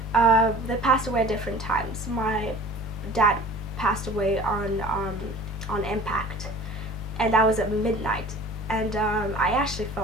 at different times. My dad passed away on impact, and that was at midnight, and I actually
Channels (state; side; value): normal; both; correlation 0.44